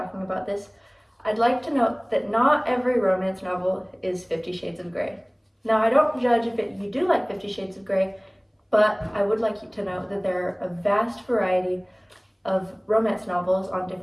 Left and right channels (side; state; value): both; identical; correlation 1.00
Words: about this. I'd like to note that not every romance novel is 50 Shades of Grey. Now I don't judge if you do like 50 Shades of Grey, but I would like you to know that there are a vast variety of romance novels on